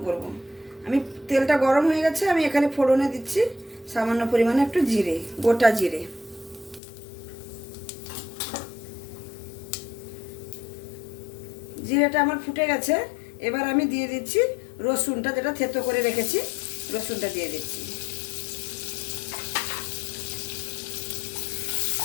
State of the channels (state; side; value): drops out; right; at 6.8 s